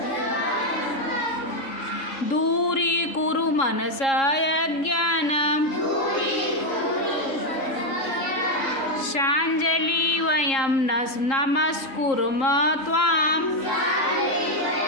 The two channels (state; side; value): late; right; 3.7 ms